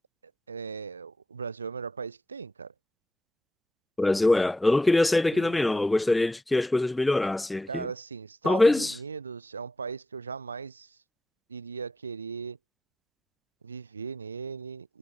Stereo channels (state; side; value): normal; both; correlation 0.89